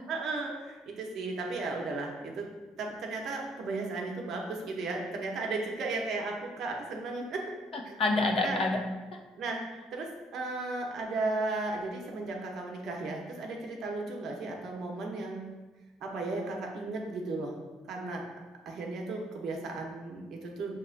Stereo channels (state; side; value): normal; both; correlation 0.64